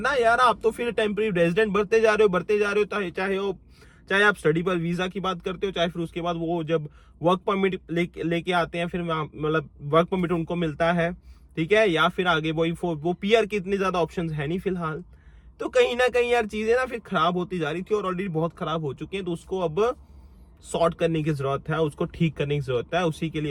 यार आप तो फिर टेम्परेरी रेजिडेंट बढ़ते जा रहे हो, चाहे आप स्टडी पर वीजा की बात करते हो, चाहे फिर उसके बाद वो जब वर्क परमिट लेके आते हैं, फिर मतलब वर्क परमिट उनको मिलता है, ठीक है, या फिर आगे वो PR की इतनी ज्यादा ऑप्शंस है नहीं फिलहाल। तो कहीं ना कहीं यार चीजें ना फिर खराब होती जा रही थी और ऑलरेडी बहुत खराब हो चुकी हैं, तो उसको अब सॉर्ट करने की जरूरत है, उसको ठीक करने की जरूरत है। उसी के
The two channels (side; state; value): both; identical; correlation 1.00